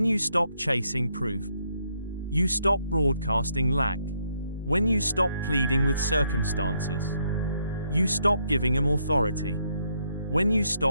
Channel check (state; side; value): inverted; both; correlation -0.75